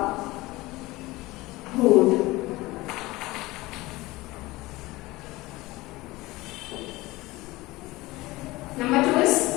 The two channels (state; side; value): quieter; right; 20.2 dB